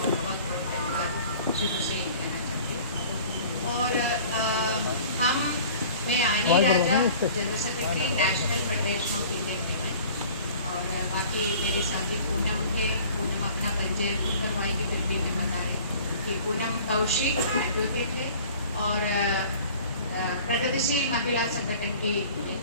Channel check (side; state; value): both; inverted; correlation -0.46